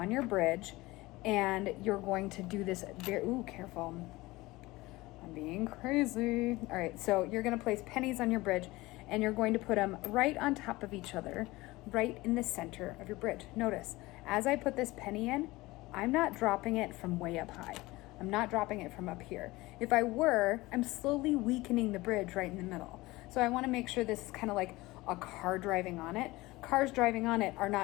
your bridge, and you're going to do this careful. I'm being crazy. All right, so you're going to place pennies on your bridge, and you're going to put them right on top of each other, right in the center of your bridge. Notice, as I put this penny in, I'm not dropping it from way up high. I'm not dropping it from up here. If I were, I'm slowly weakening the bridge right in the middle. So I want to make sure this is kind of like a car driving on it. Cars driving on it are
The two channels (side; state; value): right; quieter; 20.3 dB